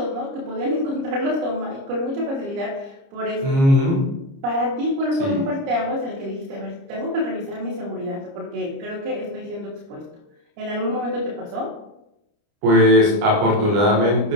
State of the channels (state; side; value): late; left; 29 ms